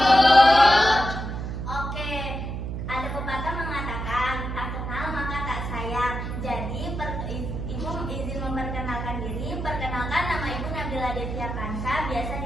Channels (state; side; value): noise; right; hum, 5 dB below the sound